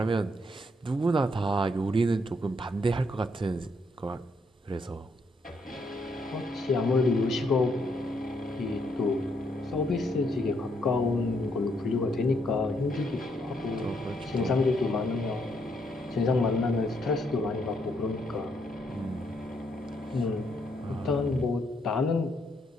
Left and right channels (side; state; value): both; normal; correlation 0.74